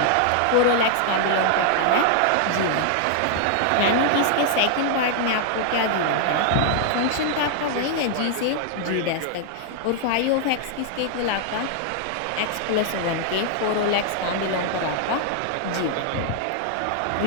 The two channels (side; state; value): both; different; correlation -0.01